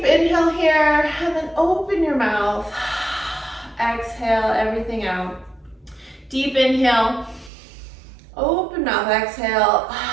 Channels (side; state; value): left; drops out; at 7.5 s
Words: inhale here, and then open your mouth. Exhale everything out. Deep inhale, open mouth, exhale.